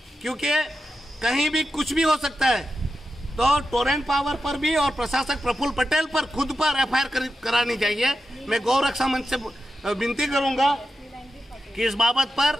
क्योंकि कहीं भी कुछ भी हो सकता है। तो टोरेंट पावर पर भी और प्रशासक प्रफुल्ल पटेल पर खुद पर एफआईआर करानी चाहिए। मैं गौ रक्षा मंच से विनती करूंगा कि इस बाबत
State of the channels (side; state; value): both; normal; correlation 0.90